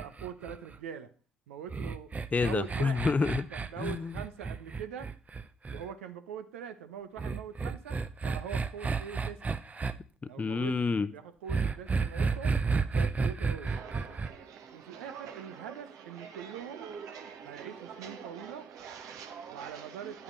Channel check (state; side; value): normal; both; correlation 0.77